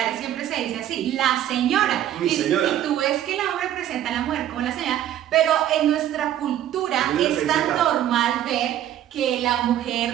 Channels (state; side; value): quieter; left; 11.7 dB